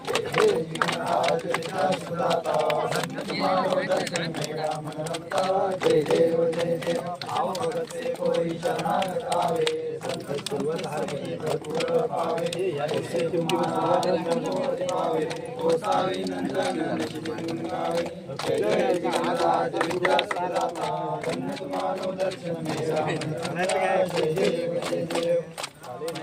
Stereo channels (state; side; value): identical; both; correlation 1.00